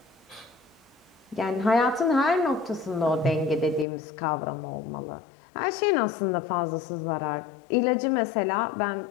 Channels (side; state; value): right; drops out; at 3.9 s